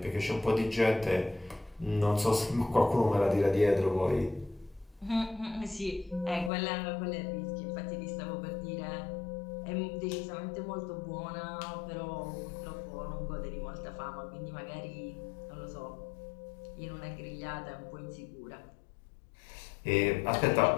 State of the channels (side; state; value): right; drops out; at 6.5 s